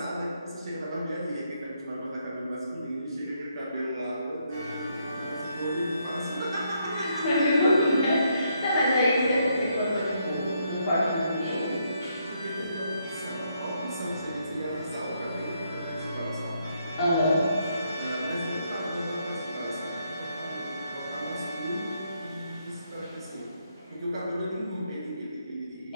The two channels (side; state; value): both; inverted; correlation -0.76